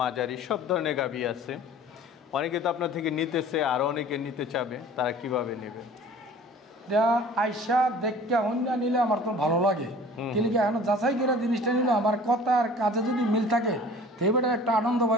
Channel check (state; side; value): normal; both; correlation 0.46